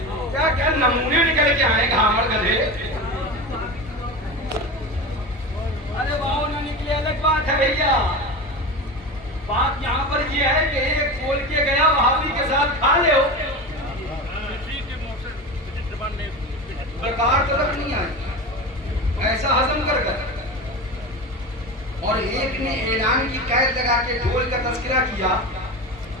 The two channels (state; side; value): normal; both; correlation 0.26